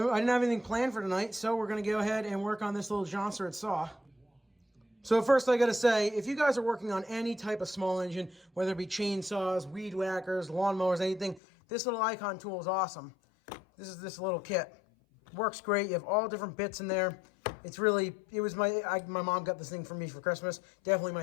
have anything planned for tonight, so we're going to go ahead and work on this little Jonsered saw. So first I got to say, if you guys are working on any type of small engine, whether it be chainsaws, weed whackers, lawnmowers, anything, this little icon tool is awesome. This is this little kit. Works great. You have all different bits in there. It's really, it was my mom got this thing for me for Christmas. Definitely my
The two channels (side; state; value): right; drops out; at 11.4 s